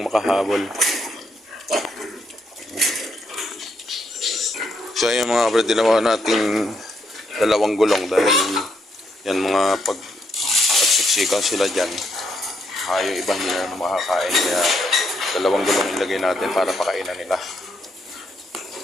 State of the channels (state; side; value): normal; both; correlation 0.76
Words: makahabol. So ayan mga kabrad, dinawa nating 2 gulong dahil yan mga pagsiksikan sila dyan. Yung ibang hindi na makakain. Kaya 2 gulong ilagay natin para pakainan nila.